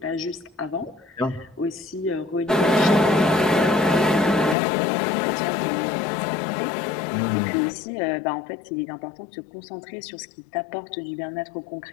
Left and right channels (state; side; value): drops out; right; at 4.5 s